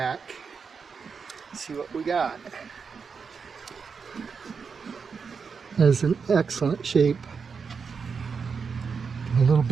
see what we got. That's an excellent shape. A little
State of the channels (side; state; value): left; quieter; 5.7 dB